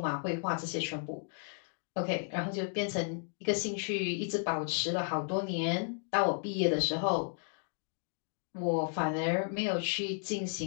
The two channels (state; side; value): silent; right; 55 dB below the other